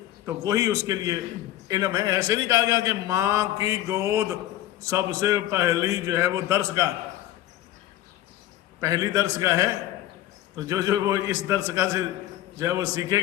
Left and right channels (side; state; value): right; quieter; 13.8 dB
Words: تو وہی اس کے لیے علم ہے. ایسے نہیں کہا گیا کہ ماں کی گود سب سے پہلی جو ہے وہ درسگاہ، پہلی درسگاہ ہے. تو جو وہ اس درسگاہ سے جو ہے وہ سیکھے